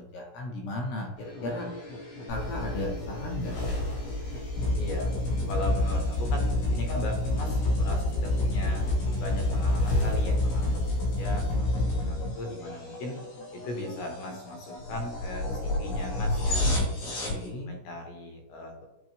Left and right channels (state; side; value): late; right; 17 ms